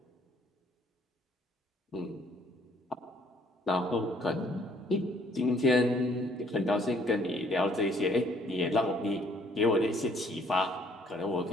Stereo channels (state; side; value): normal; both; correlation 0.63